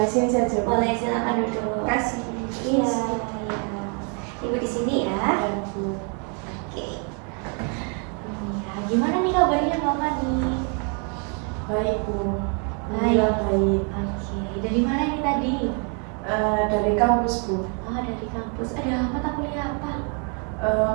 saja. Boleh, silakan duduk. Kasih. Iya, iya. Ibu di sini ya. Bu. Oke. Ya, gimana nih kabarnya Mbak Fani? Baik Bu. Baik. Alhamdulillah baik. Oke. Dari mana nih tadi? Dari kampus Bu. Oh, dari kampus. Ada mata kuliah apa?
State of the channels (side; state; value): left; quieter; 38.3 dB